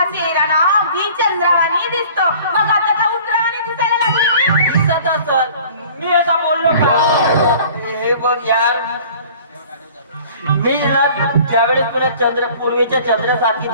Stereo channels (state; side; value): inverted; both; correlation -0.48